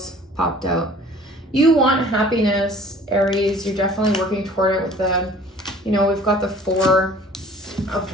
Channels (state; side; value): normal; both; correlation 0.50